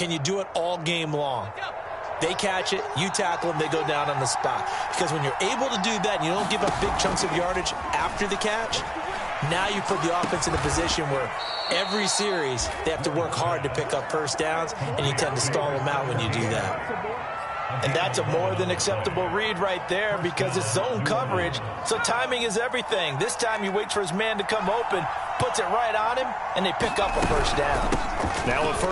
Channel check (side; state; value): both; identical; correlation 1.00